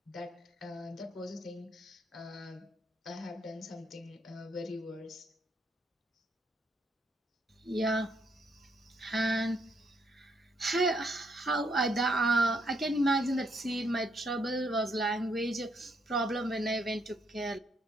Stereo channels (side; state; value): both; normal; correlation 0.73